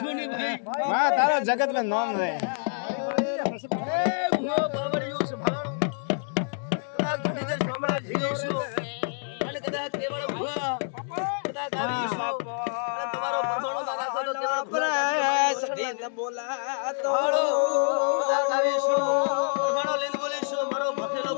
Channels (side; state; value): right; silent; digital silence